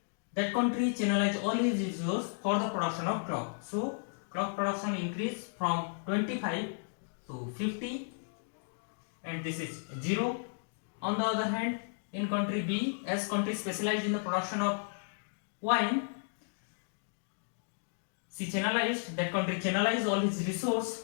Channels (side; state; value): right; silent; digital silence